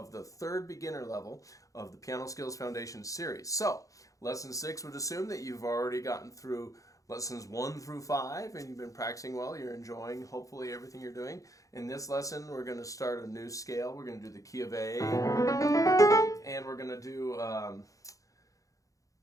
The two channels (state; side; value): late; right; 0.16 ms